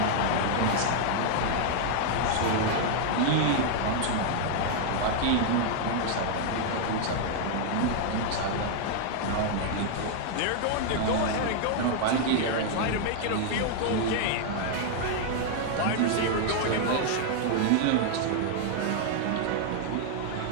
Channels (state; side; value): different; both; correlation 0.00